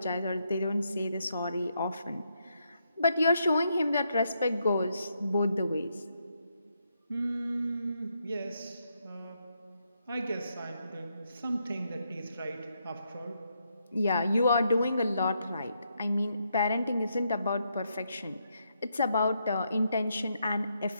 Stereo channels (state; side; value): inverted; both; correlation -0.79